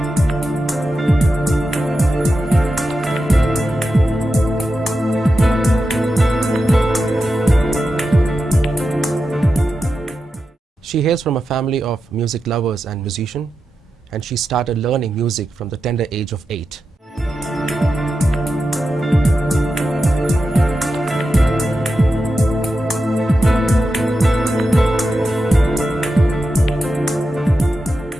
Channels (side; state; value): both; normal; correlation 0.90